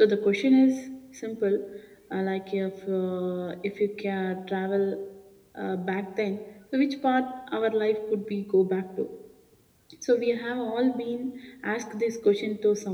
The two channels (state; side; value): identical; both; correlation 1.00